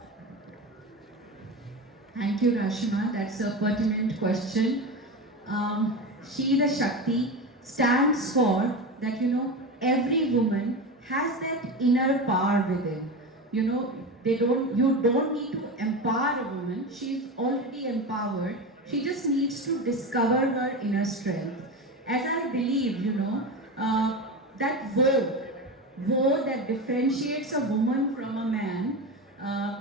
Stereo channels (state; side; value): normal; both; correlation 0.23